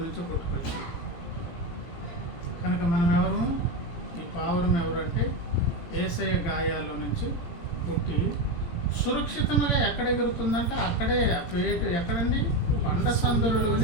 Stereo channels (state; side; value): late; right; 17 ms